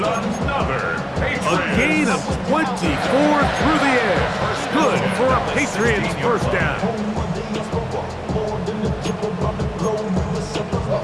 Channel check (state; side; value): identical; both; correlation 1.00